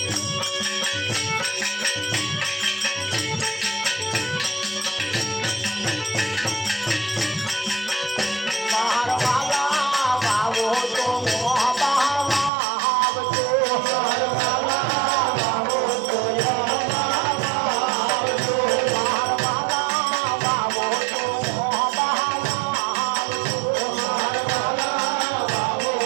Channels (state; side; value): drops out; left; at 12.5 s